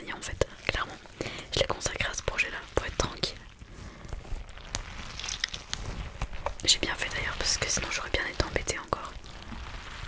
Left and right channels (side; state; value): both; identical; correlation 1.00